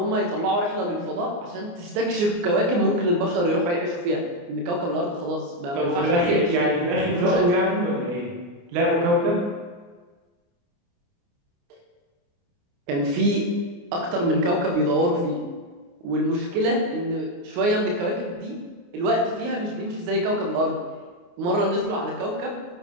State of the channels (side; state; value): left; late; 29 ms